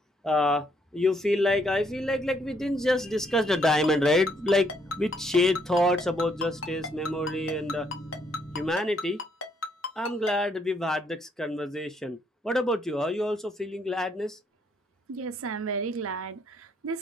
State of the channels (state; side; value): normal; both; correlation 0.71